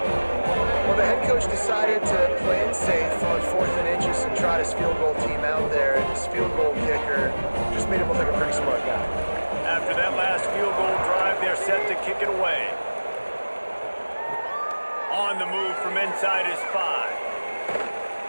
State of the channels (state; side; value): inverted; both; correlation -1.00